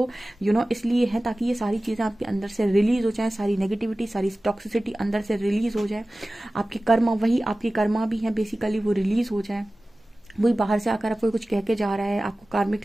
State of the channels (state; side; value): normal; both; correlation 0.97